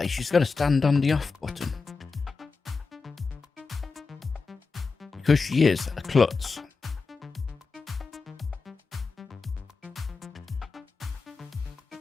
she's got to stand on the off button. Because she is a klutz.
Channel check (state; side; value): quieter; right; 4.5 dB